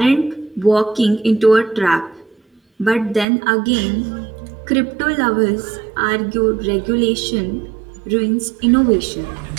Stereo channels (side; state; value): left; drops out; at 3.2 s